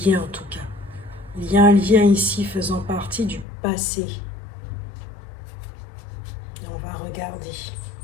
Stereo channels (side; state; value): right; drops out; at 3.5 s